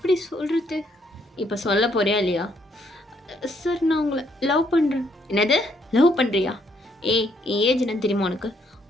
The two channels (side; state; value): both; normal; correlation 0.71